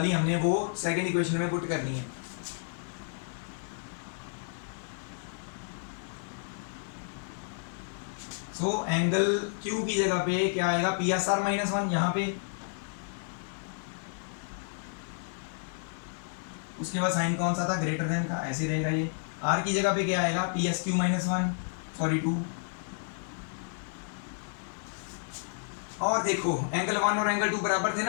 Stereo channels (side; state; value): right; silent; 57 dB below the other